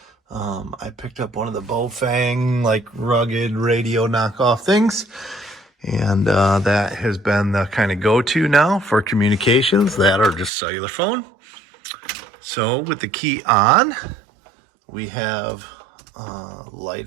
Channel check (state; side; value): drops out; left; at 10.5 s